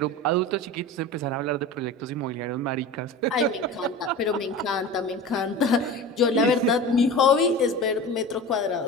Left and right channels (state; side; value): normal; both; correlation 0.33